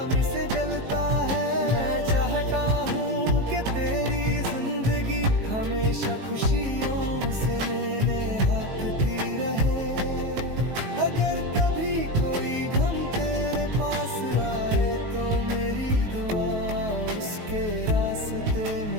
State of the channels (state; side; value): late; left; 19 ms